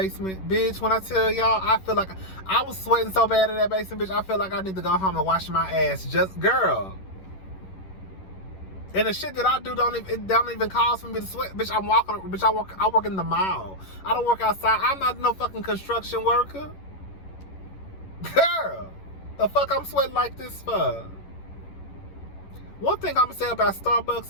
Bitch, when I tell y'all, I feel like I was sweating so bad in that basement, bitch, I feel like I need to go home and wash my ass. Just, girl. And the shit that I do don't even cause for me to sweat. Bitch, I work in the mall. I don't work outside. I'm not no fucking construction worker. Girl, the fuck I'm sweating like this for? One thing I'm gonna say about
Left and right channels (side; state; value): right; late; 11 ms